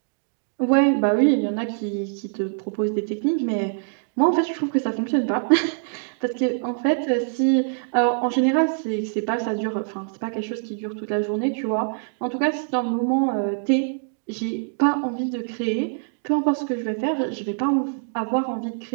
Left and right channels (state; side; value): silent; left; digital silence